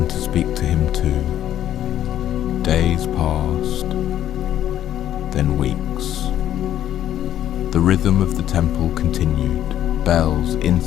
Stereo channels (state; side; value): quieter; right; 11.5 dB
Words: to speak to him too. Days passed, then weeks. The rhythm of the temple continued, bells,